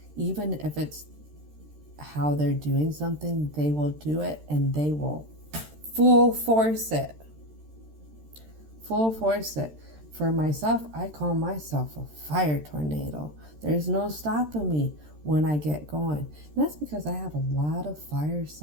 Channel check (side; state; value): left; late; 13 ms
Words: even if it's how they're doing something, they will do it, and they will full force it. Full force it. For myself, I call myself a fire tornado. There's no stopping me when I get going. And that's because I have a lot of fire